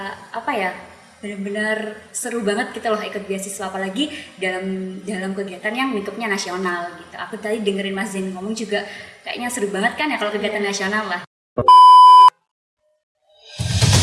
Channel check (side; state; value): both; identical; correlation 1.00